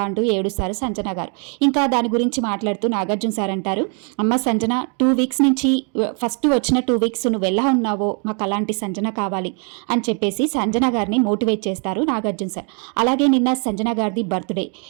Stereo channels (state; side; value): quieter; left; 38.4 dB